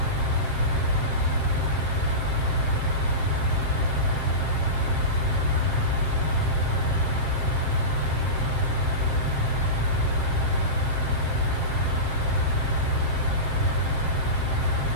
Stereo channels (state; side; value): late; left; 7.6 ms